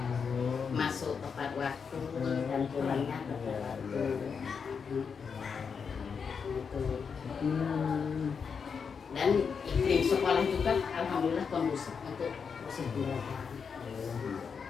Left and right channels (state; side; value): quieter; right; 6.1 dB